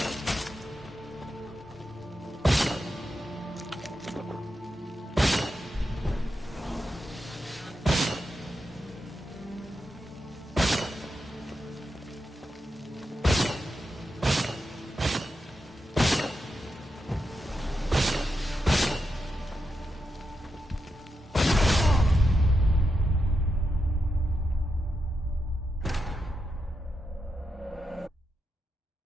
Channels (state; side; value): normal; both; correlation 0.86